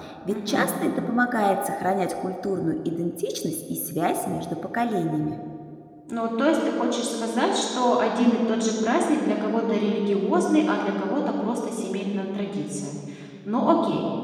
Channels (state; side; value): identical; both; correlation 1.00